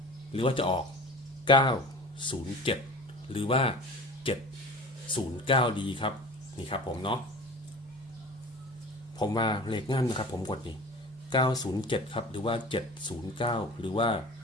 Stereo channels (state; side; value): normal; both; correlation 0.39